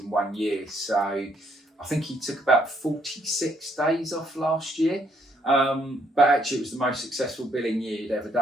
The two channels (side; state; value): both; normal; correlation 0.70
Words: 1 year. So I think he took about 46 days off last year. But actually it was the most successful billing year he'd ever